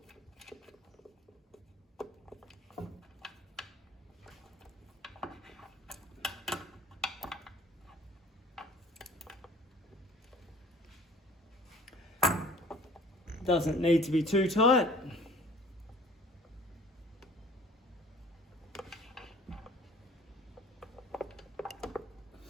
Doesn't need to be too tight.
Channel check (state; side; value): normal; both; correlation 0.49